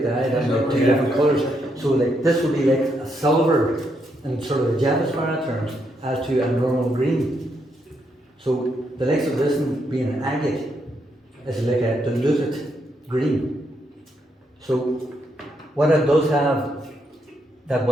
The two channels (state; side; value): normal; both; correlation 0.78